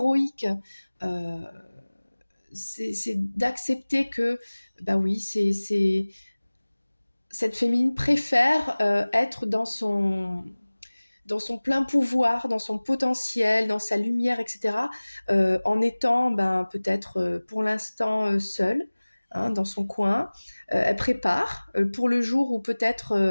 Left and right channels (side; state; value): both; inverted; correlation -1.00